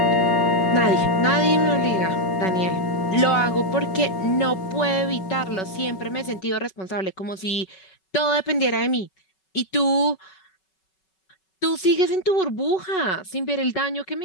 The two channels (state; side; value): late; right; 5.3 ms